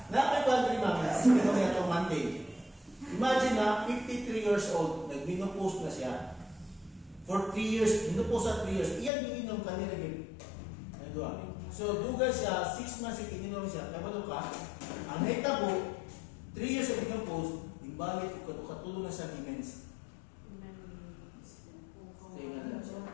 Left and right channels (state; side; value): drops out; right; at 9.1 s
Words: nanakoy po ang 3 months, hindi ko na itong Monday. Imagine na, 53 years old, nag-minopause na siya. For 3 years, minopause at 3 years, iyan yung inom kanila yun. So, duga siya, 6 months ininom siya, kabalo ka, ang hitabo, 3 years of minopause, imbalik ko, katulong na sa demens.